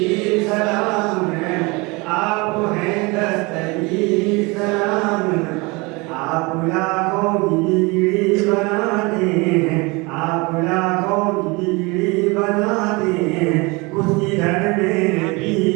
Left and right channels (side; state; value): left; quieter; 26.3 dB